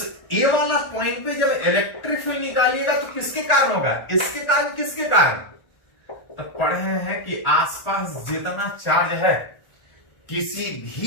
A वाला पॉइंट पे जब इलेक्ट्रिक फील्ड निकालिएगा तो किसके कारण होगा, इसके कारण किसके कारण। तो पढ़े हैं कि आसपास जितना चार्ज है किसी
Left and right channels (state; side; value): late; right; 1.4 ms